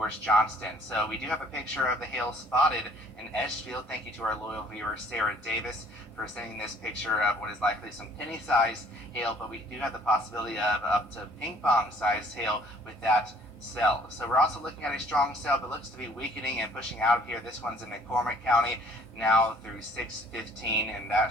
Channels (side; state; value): both; normal; correlation 0.57